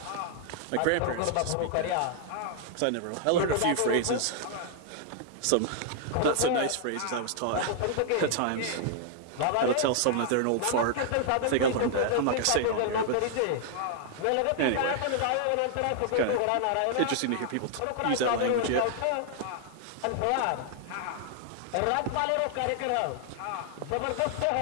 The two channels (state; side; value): different; both; correlation 0.00